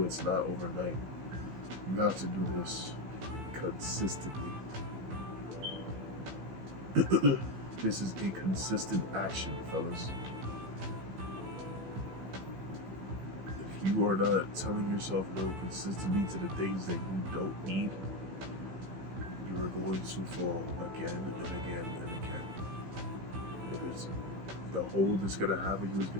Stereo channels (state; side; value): late; left; 16 ms